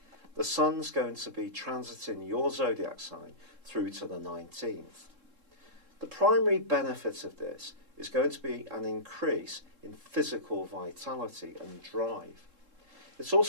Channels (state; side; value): late; left; 3.7 ms